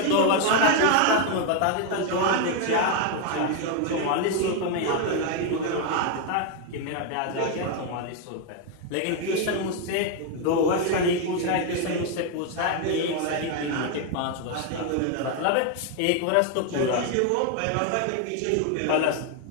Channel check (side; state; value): both; different; correlation 0.01